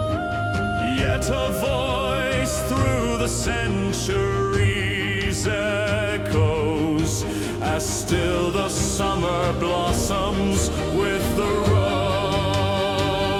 Yet a voice through the centuries echoes, as still the summer blossoms with the rose.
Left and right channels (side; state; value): both; identical; correlation 1.00